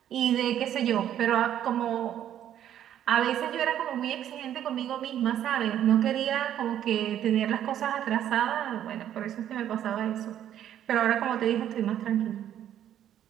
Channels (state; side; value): quieter; left; 10.8 dB